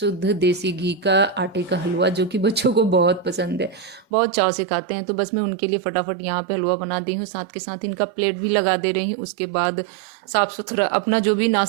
देसी घी का आटे का हलवा, जो कि बच्चों को बहुत पसंद है, बहुत चाव से खाते हैं। तो बस मैं उनके लिए फटाफट यहाँ पे हलवा बना दी हूँ, साथ के साथ इनका प्लेट भी लगा दे रही हूँ। उसके बाद साफ़ सुथरा अपना जो भी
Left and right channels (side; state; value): left; drops out; at 4.0 s